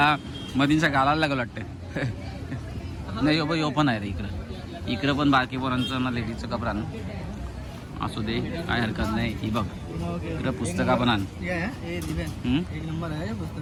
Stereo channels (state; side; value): identical; both; correlation 1.00